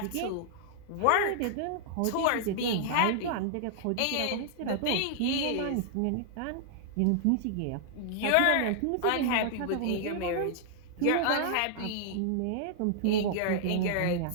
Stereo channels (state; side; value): different; both; correlation -0.01